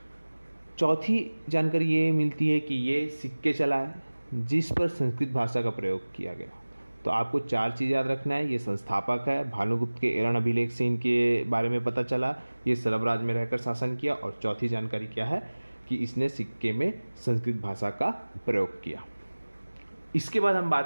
चौथी जानकारी ये मिलती है कि ये सिक्के चलाए जिस पर संस्कृत भाषा का प्रयोग किया गया। तो आपको 4 चीज़ याद रखना है। ये संस्थापक है, भानुगुप्त के एरण अभिलेख से इनके बारे में पता चला, ये सरबराज में रहकर शासन किया, और चौथी जानकारी क्या है कि इसने सिक्के में संस्कृत भाषा का प्रयोग किया। इसके बाद हम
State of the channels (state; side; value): inverted; both; correlation -1.00